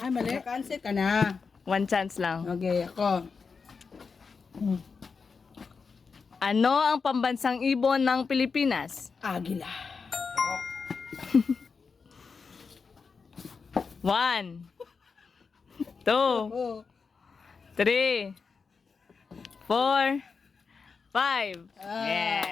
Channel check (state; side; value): quieter; right; 5.1 dB